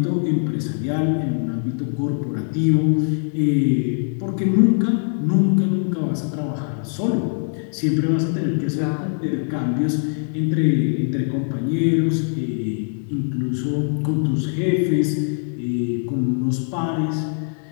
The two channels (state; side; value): silent; right; digital silence